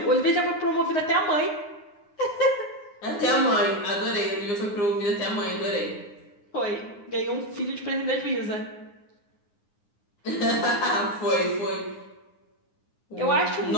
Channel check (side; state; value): right; late; 9.7 ms